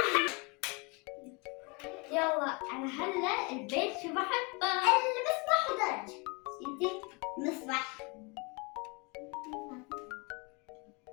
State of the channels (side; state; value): right; quieter; 29.4 dB